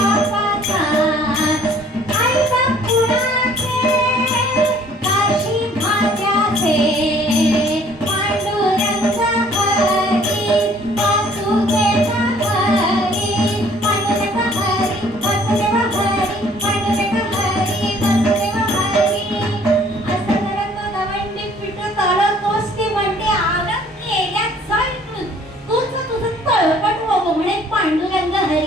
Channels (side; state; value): both; normal; correlation 0.57